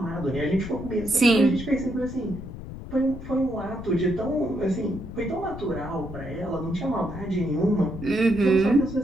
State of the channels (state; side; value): noise; left; rumble, 11 dB below the sound